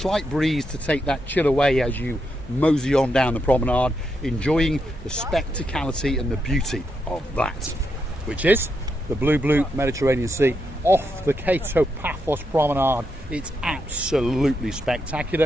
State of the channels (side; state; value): both; normal; correlation 0.82